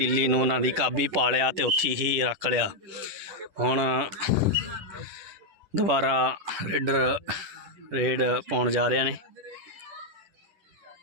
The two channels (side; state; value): left; late; 10 ms